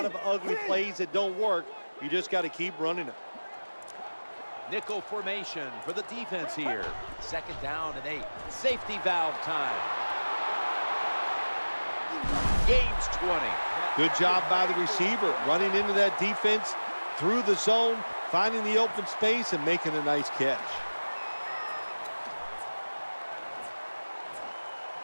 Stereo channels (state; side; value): inverted; both; correlation -1.00